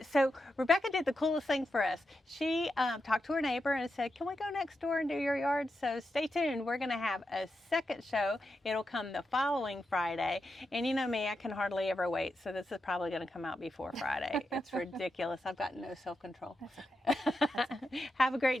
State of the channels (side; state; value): both; normal; correlation 0.87